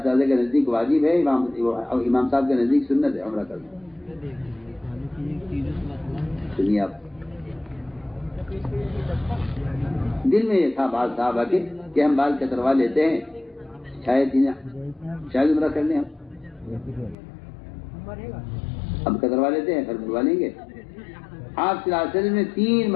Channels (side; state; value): right; drops out; at 17.2 s